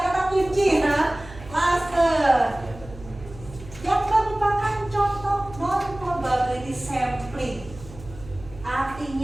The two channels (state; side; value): noise; right; hum, 17 dB below the sound